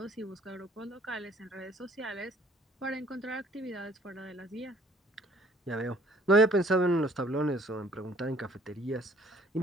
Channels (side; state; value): both; normal; correlation 0.58